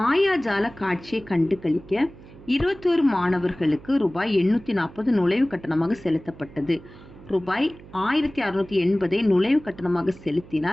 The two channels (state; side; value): noise; right; hum, 20 dB below the sound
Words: காட்சியை கண்டு கழிக்க 21 மாணவர்களுக்கு ரூபாய் 840 நுழைவு கட்டணமாக செலுத்தப்பட்டது. ரூபாய் 1680 நுழைவு கட்டணமாக